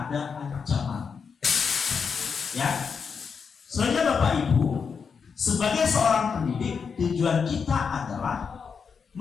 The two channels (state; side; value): quieter; right; 6.0 dB